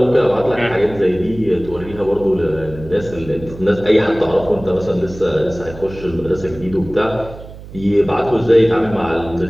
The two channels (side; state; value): right; noise; hum, 16 dB below the sound